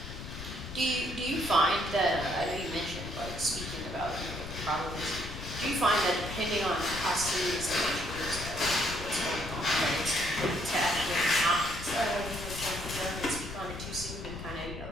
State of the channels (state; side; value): noise; left; rumble, 9 dB below the sound